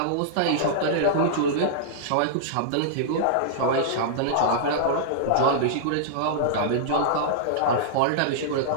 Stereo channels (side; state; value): both; different; correlation -0.02